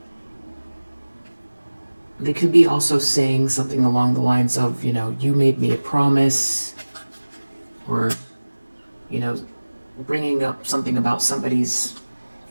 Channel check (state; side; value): inverted; both; correlation -1.00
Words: They could be also saying something along the lines of, you made me a promise, or, bringing up something about somebody's